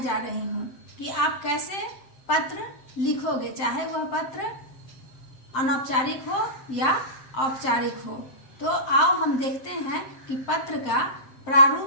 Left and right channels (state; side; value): late; right; 7.7 ms